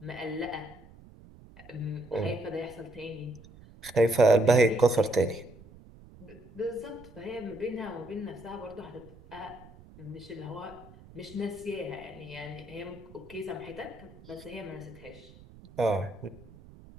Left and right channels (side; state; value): right; noise; rumble, 20 dB below the sound